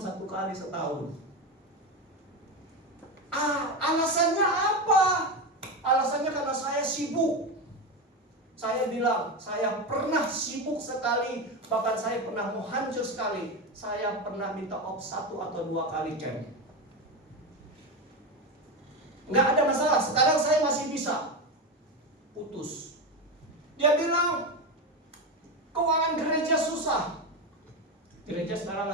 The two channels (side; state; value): both; normal; correlation 0.17